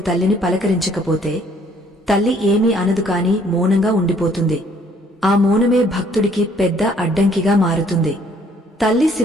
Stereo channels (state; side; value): normal; both; correlation 0.62